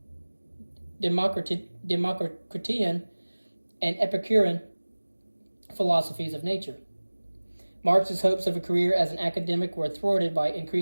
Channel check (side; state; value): both; inverted; correlation -1.00